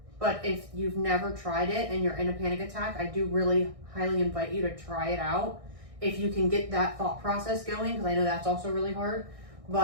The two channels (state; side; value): late; left; 1.6 ms